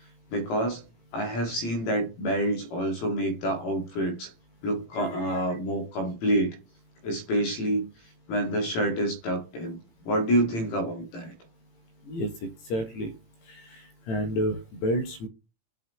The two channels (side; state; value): right; late; 18 ms